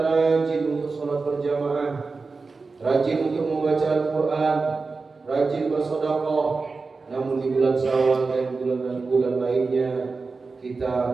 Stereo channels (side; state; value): left; quieter; 4.2 dB